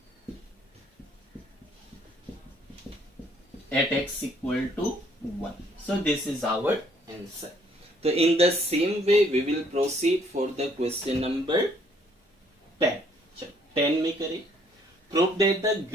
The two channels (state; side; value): normal; both; correlation 0.64